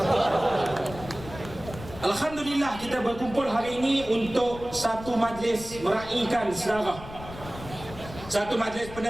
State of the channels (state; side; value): noise; left; rumble, 14 dB below the sound